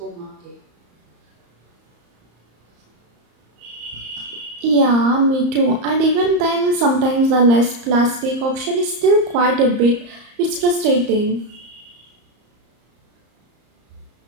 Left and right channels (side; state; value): left; late; 34 ms